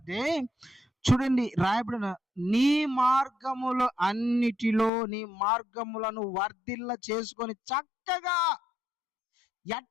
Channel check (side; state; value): right; drops out; at 4.9 s